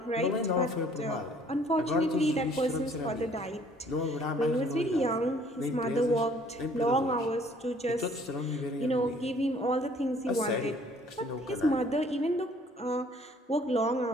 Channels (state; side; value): normal; both; correlation 0.58